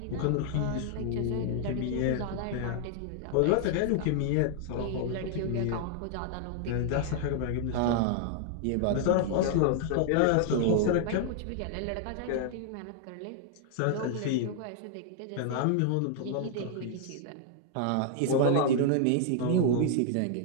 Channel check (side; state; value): both; different; correlation 0.00